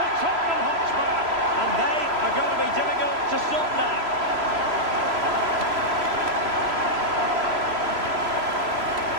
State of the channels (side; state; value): left; late; 3.0 ms